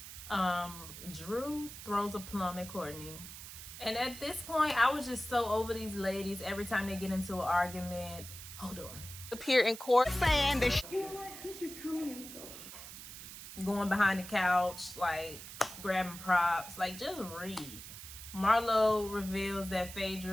Drew throws a plum at Courtney. And at this point, I was just so over these ladies. Every time they get into an argument, hold on. Appear in court. Saying that You know what? Since she's coming in so Going behind the couch, like grabbing props, like just read. Marlo reveals that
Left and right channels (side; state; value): right; noise; hiss, 12 dB below the sound